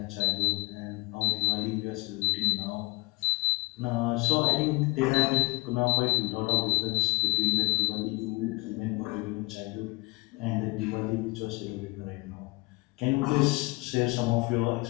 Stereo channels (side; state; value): right; quieter; 25.5 dB